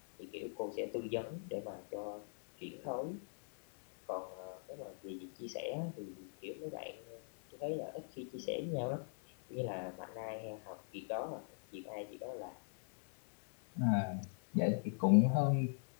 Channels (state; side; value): silent; right; 51 dB below the other